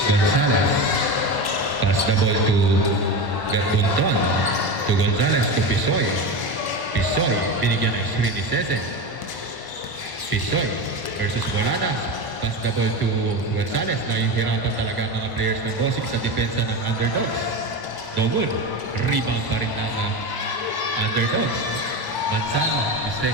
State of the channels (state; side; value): late; left; 1.1 ms